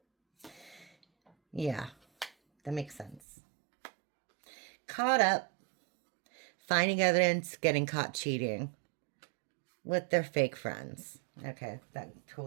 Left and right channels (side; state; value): left; drops out; at 3.2 s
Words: Yeah. That makes sense. Caught up. Finding evidence, getting caught cheating with their fake friends. Okay, that